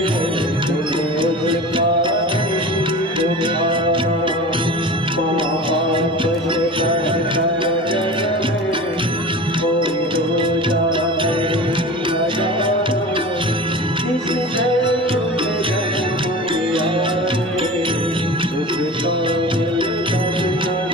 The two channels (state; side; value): normal; both; correlation 0.34